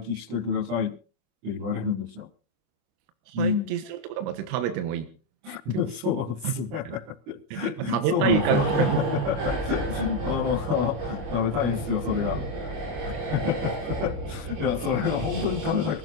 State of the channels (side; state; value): left; late; 25 ms